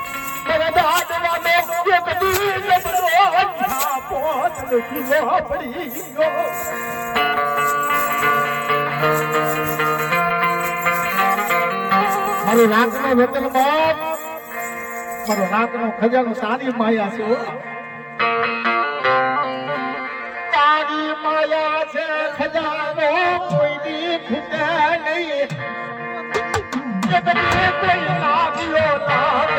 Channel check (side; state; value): both; identical; correlation 1.00